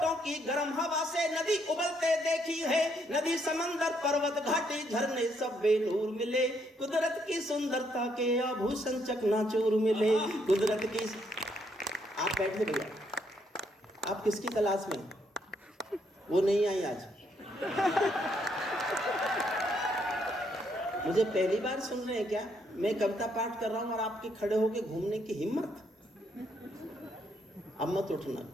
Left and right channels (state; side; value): normal; both; correlation 0.73